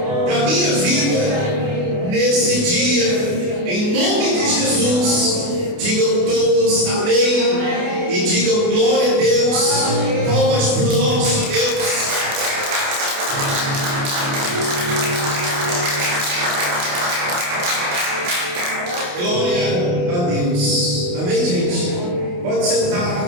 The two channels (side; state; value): left; late; 28 ms